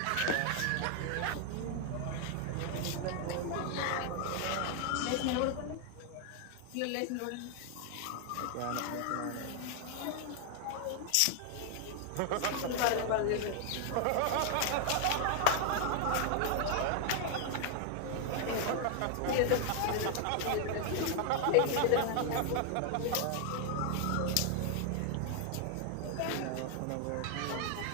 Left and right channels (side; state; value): both; different; correlation 0.00